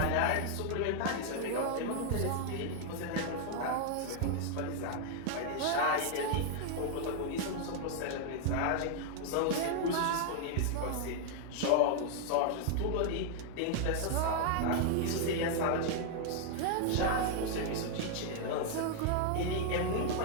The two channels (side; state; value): both; different; correlation 0.00